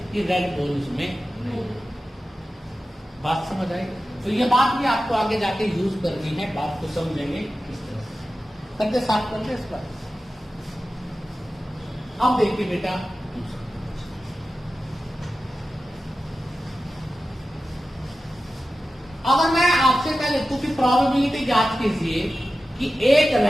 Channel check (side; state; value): both; normal; correlation 0.94